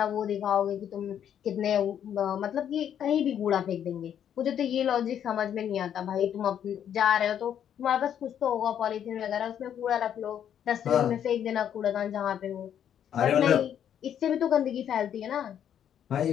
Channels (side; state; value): right; quieter; 9.4 dB